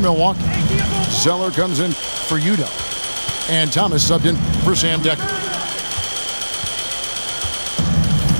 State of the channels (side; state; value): both; inverted; correlation -1.00